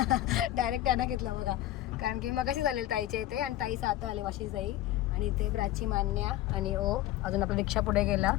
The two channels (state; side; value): quieter; right; 14.4 dB